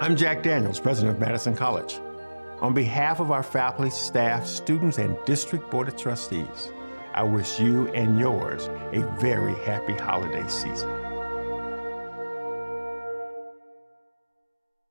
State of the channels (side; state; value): both; inverted; correlation -1.00